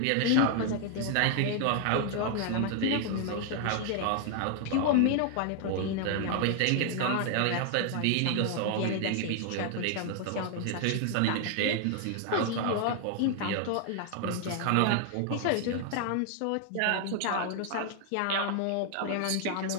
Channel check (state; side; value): different; both; correlation 0.00